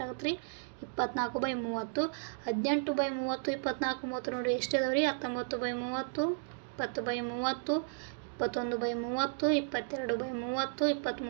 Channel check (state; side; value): silent; left; digital silence